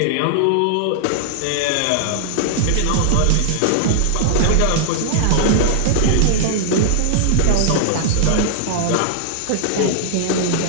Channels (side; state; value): both; different; correlation 0.00